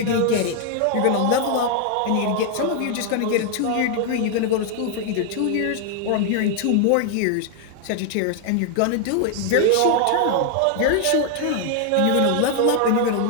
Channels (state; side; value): different; both; correlation 0.00